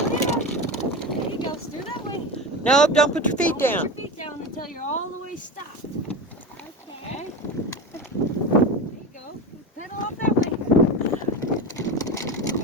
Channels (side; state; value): both; normal; correlation 0.25